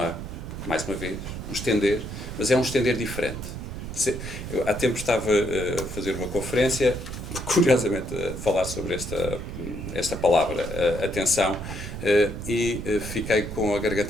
mais uma vez, um estender, mas é um estender diferente. Eu, há tempo estava a fazer uma conferência, curiosamente a falar sobre esta palavra, atenção, e fiquei com a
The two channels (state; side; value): noise; right; rumble, 8 dB below the sound